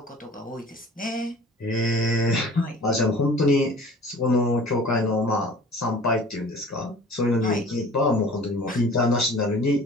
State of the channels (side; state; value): both; normal; correlation 0.45